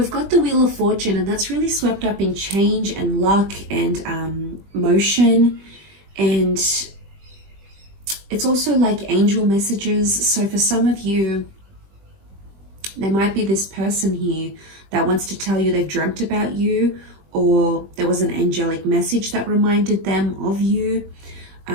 got the Wheel of Fortune, and that's really swept up in change and luck and motion. And it's also like angel messages. So for some of you, there might be this person here that wants to tell you they've dreamt about you, or there was an angelic message that reminded them of you.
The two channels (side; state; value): left; late; 20 ms